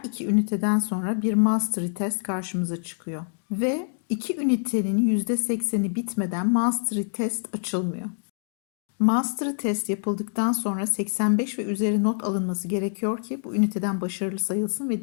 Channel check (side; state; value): right; silent; digital silence